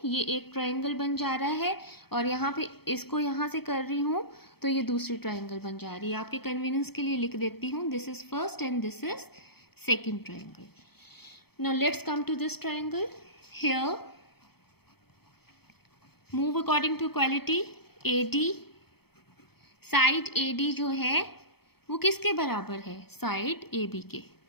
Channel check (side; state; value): right; late; 0.96 ms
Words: ये एक ट्रायंगल बन जा रहा है और यहाँ पे इसको यहाँ से कर रही हूँ तो ये दूसरी ट्रायंगल बन जा रही है. आपके कन्वीनियंस के लिए लिख देती हूँ, this is first and this is second triangle. Now let's come to this triangle. Here move according to equality. AD, side AD जो है वो किसके बराबर है, साइड AB के,